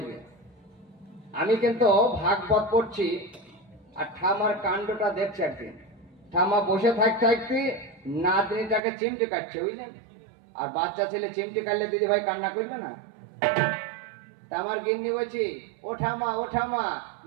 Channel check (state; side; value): drops out; left; at 8.8 s